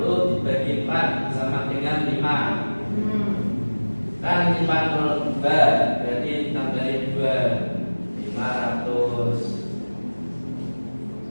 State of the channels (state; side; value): inverted; both; correlation -1.00